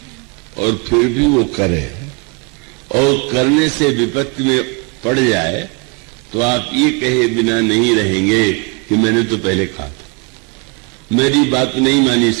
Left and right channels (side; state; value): left; quieter; 32.3 dB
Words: और फिर भी वो करे और करने से विपत्ति में पड़ जाए, तो आप ये कहे बिना नहीं रहेंगे कि मैंने तो पहले कहा था, मेरी बात नहीं मानी,